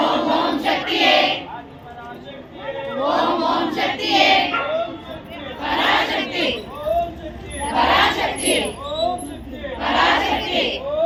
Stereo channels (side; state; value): both; identical; correlation 1.00